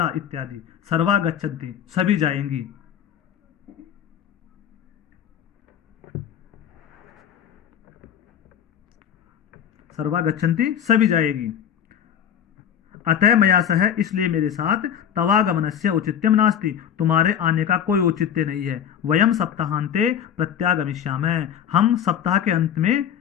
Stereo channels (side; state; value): right; quieter; 9.2 dB